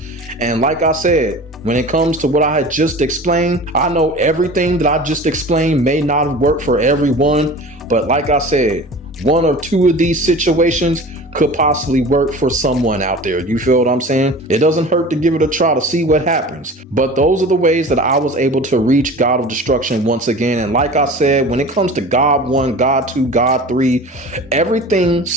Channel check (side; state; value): both; normal; correlation 0.38